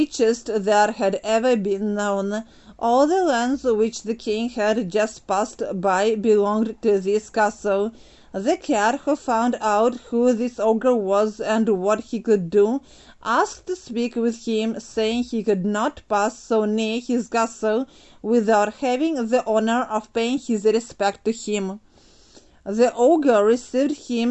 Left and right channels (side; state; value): both; identical; correlation 1.00